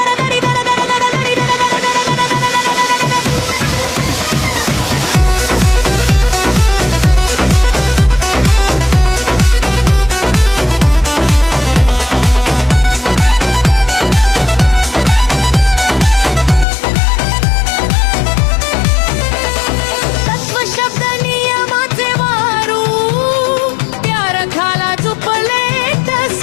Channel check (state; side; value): drops out; right; at 16.7 s